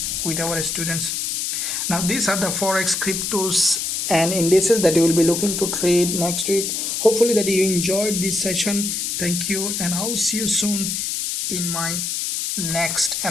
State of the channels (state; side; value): noise; left; hiss, 2 dB below the sound